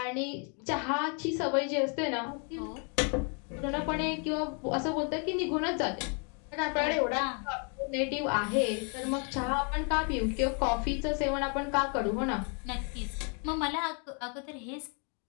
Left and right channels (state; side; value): quieter; right; 38.7 dB